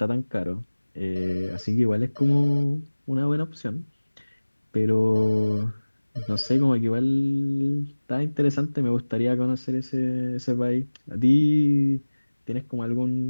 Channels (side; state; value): both; inverted; correlation -1.00